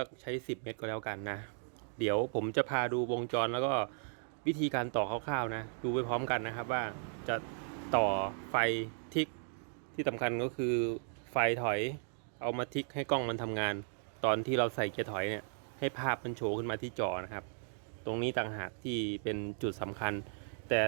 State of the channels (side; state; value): left; silent; 54 dB below the other